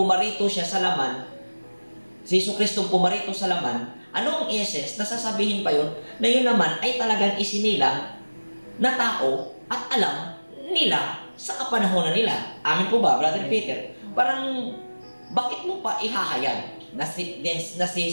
siya sa laman, si Jesucristo pumarito sa laman, anong essence na sasabihin pa yun, na yun naman ay talagang isinilang na tao at alam nila sa kapanahonan nila. Amin po ba, Brother Peter? Parang, bakit mo pa ihahayag na si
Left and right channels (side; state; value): both; inverted; correlation -1.00